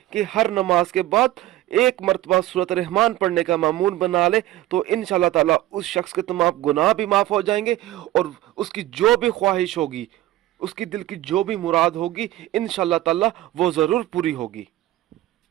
कि हर नमाज के बाद एक मरतबा सूरत रहमान पढ़ने का मामूल बना ले, तो इंशाअल्लाह ताला उस शख्स के तमाम गुनाह भी माफ़ हो जाएंगे और उसकी जो भी ख्वाहिश होगी, उसकी दिल की जो भी मुराद होगी, इंशाअल्लाह ताला वो ज़रूर पूरी होगी।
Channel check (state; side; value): quieter; left; 15.3 dB